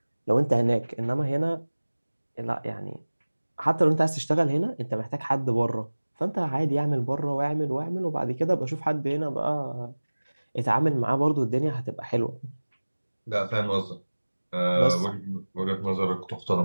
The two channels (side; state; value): both; inverted; correlation -1.00